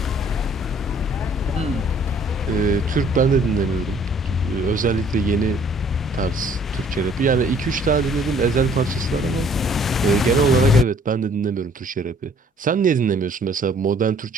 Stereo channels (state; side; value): normal; both; correlation 0.58